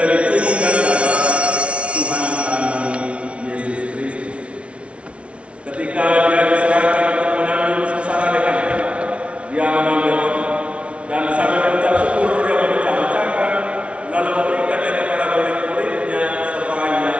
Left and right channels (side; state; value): left; late; 0.061 ms